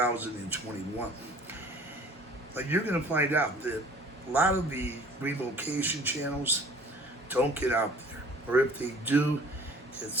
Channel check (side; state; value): both; normal; correlation 0.49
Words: But you're going to find out that a lot of the relocation channels don't get out there. Or if they do, it's